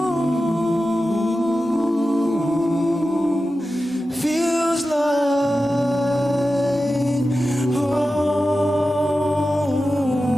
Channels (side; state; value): both; normal; correlation 0.93